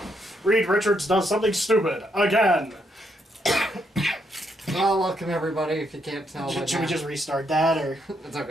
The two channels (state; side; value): normal; both; correlation 0.76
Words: Reed Richards does something stupid again. Well, welcome everybody. If you can't tell, Should we just restart that, or? It's